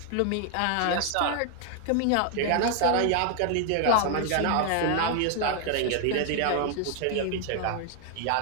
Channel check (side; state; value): both; different; correlation 0.00